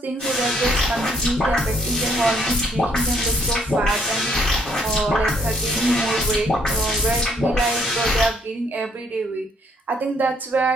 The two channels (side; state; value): both; normal; correlation 0.68